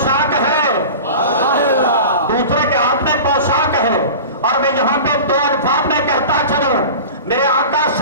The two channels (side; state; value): both; inverted; correlation -0.34